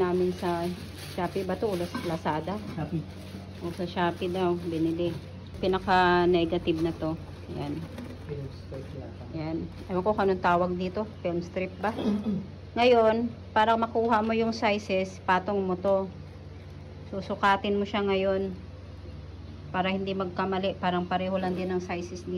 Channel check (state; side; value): identical; both; correlation 1.00